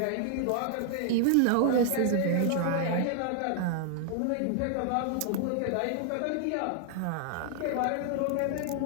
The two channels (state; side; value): different; both; correlation 0.00